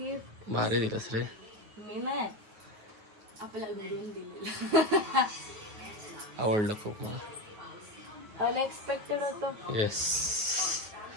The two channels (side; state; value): left; late; 9.4 ms